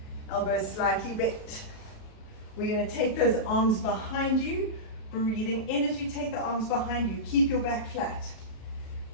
Elbows slightly bent. We're going to take those arms behind you. Breathing in as you take the arms behind you. Keep your back flat.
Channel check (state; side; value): late; right; 37 ms